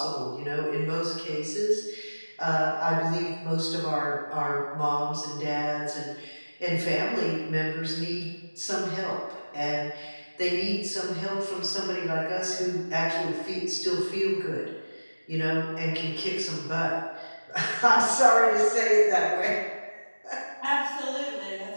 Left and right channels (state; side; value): inverted; both; correlation -1.00